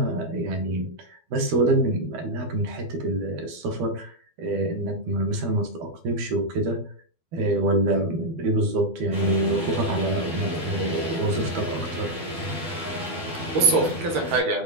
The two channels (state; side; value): late; left; 12 ms